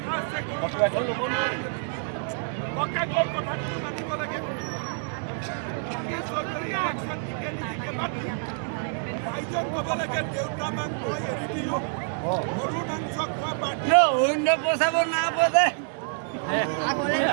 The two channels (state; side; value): silent; left; 60 dB below the other